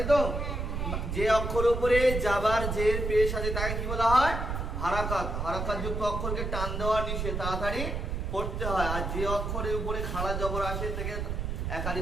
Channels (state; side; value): noise; right; rumble, 2 dB below the sound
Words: তো। যে অক্ষরের উপরে যাবার জের পেশ আছে তাকে কি বলা হয়? হারাকাত। হারাকাত যুক্ত অক্ষরকে টান দেওয়া নিষেধ, তাড়াতাড়ি পড়তে হয়। আর যে অক্ষরের উপরে খাড়া জবর আসে তাকে